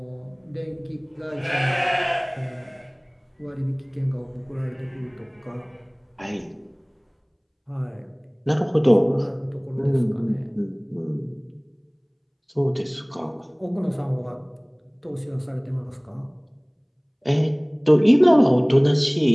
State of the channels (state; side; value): identical; both; correlation 1.00